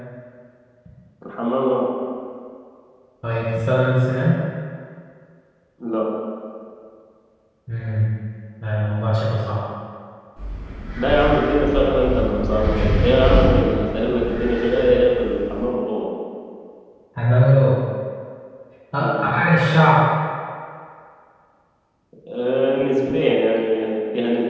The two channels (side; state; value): both; identical; correlation 1.00